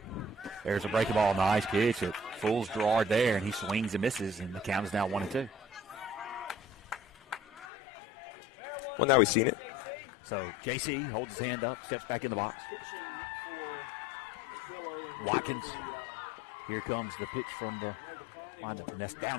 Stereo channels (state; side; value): drops out; right; at 7.7 s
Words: There's a breaking ball, nice pitch. It fools Gerard there, and he swings and misses, and the count is now 1-2. Well, now we've seen it. So JC holds his hand up, steps back in the box. Watkins, here comes the pitch from the windup, and that's